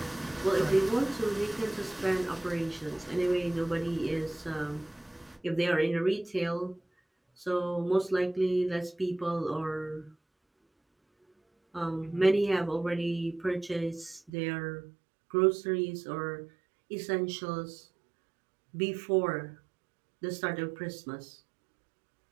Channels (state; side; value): drops out; left; at 14.3 s